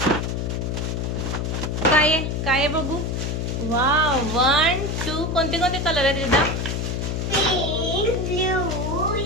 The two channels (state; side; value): noise; left; hum, 1 dB below the sound